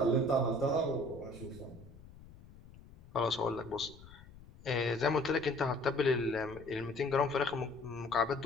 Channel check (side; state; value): left; noise; rumble, 20 dB below the sound